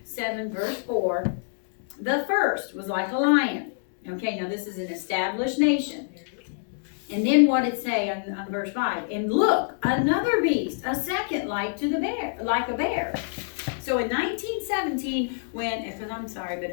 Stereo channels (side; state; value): right; silent; digital silence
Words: 7, verse 4, the first was like a lion. Okay, now this is an established nation. And then what it say on verse 5? And look, another beast, a second like a bear. So in 1917, because I'm sorry, but